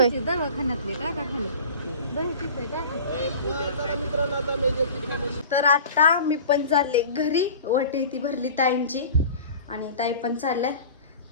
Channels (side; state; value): both; inverted; correlation -0.39